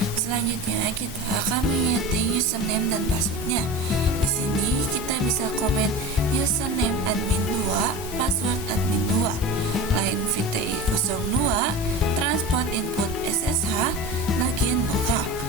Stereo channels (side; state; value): both; normal; correlation 0.30